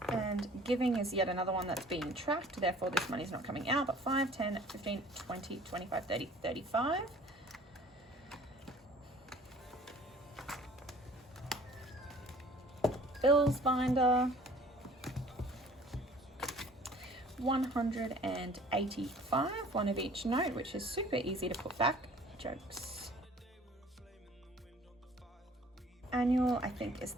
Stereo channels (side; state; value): both; normal; correlation 0.51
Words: And giving is yet another one that's being tracked, therefore this money's not coming out, but 5, 10, 15, 20, 25, 30, 35. Bills binder, 185, one of each note, which is super easy to put back. Jokes. Annual, I think, is